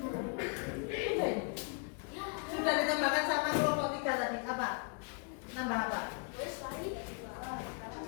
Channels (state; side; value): quieter; right; 38.4 dB